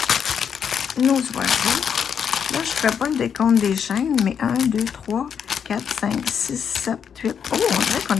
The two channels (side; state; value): right; quieter; 7.5 dB